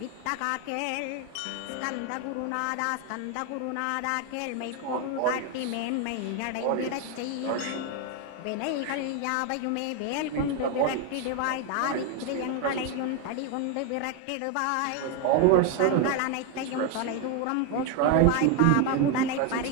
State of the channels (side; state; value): both; different; correlation 0.01